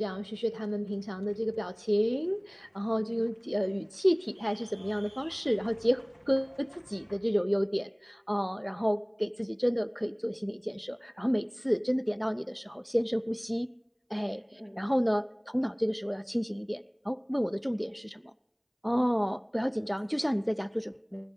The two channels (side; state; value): both; identical; correlation 1.00